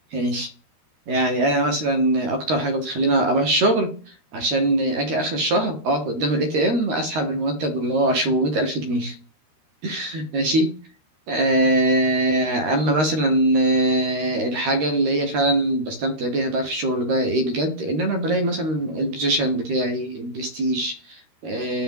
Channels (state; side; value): late; left; 13 ms